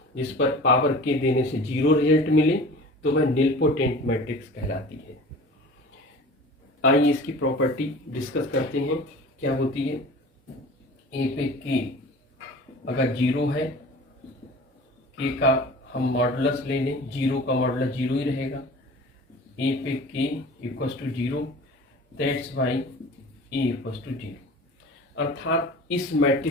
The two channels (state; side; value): normal; both; correlation 0.40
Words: जिस पर पावर के देने से 0 रिजल्ट मिले तो वह निलपोटेंट मैट्रिक्स कहलाती है। आइए इसकी प्रॉपर्टी डिस्कस करते हैं, क्या होती है। ए पे के अगर 0 है, के का हम मॉडुलस ले लें, 0 का मॉडुलस 0 ही रहेगा। ए पे K equals to 0, that's why A equals to 0। अर्थात इस